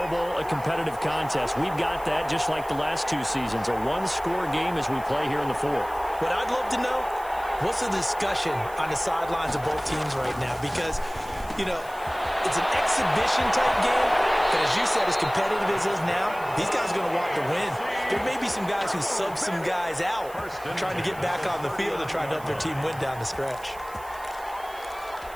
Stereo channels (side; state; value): right; noise; hiss, 21 dB below the sound